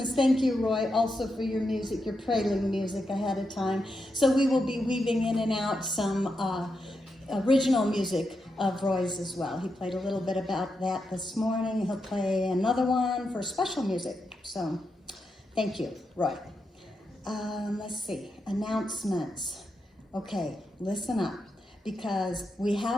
Thank you, Roy, also for your music, your prelude music ahead of time. So we will be weaving in and out some original music of Roy's as well. He played a little bit about that this morning. He'll play another one for special music. So thank you, Roy. Let's see, announcements. Okay, listen up, because we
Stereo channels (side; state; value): both; normal; correlation 0.85